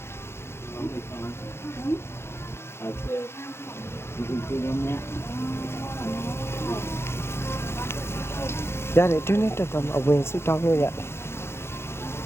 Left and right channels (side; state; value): right; late; 0.12 ms